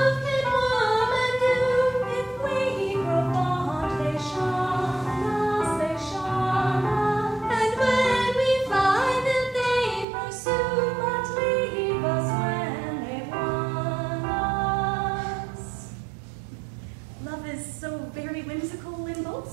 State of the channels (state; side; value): drops out; left; at 10.1 s